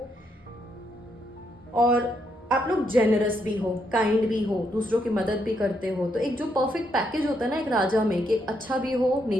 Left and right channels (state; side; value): normal; both; correlation 0.76